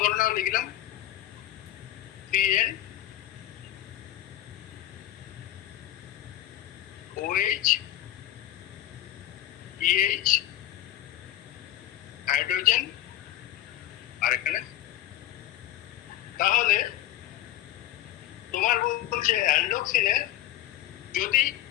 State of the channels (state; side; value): quieter; right; 13.8 dB